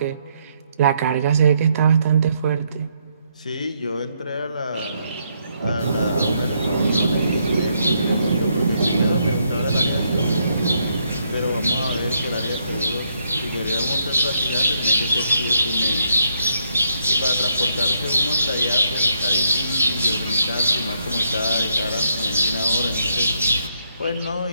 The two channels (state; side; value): inverted; both; correlation -0.75